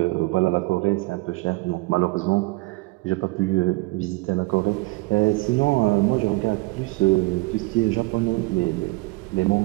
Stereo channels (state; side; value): quieter; left; 23.4 dB